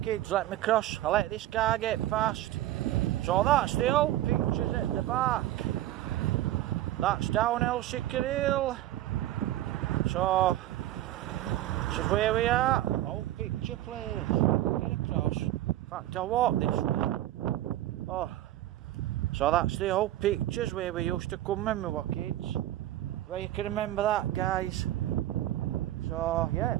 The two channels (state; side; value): quieter; left; 14.3 dB